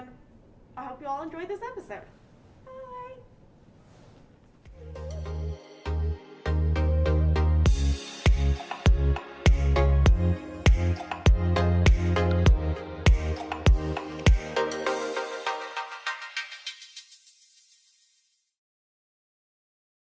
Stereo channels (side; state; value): both; identical; correlation 1.00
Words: I hope you all enjoyed this episode.